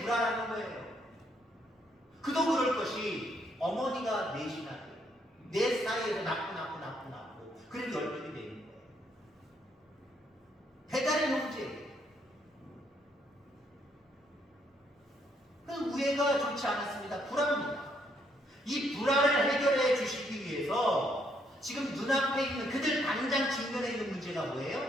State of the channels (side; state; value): both; normal; correlation 0.72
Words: 불화라는 거예요. 그도 그럴 것이 어머니가 넷이나 돼요. 넷 사이에서 낳고 그래도 10명이 되는 거예요. 배달의 형제. 그 우애가 좋지 않았습니다. 불화입니다. 이 불화를 해결해 주시기 위해서 지금 눈앞에 있는 그들 당장 직면해 있는 문제가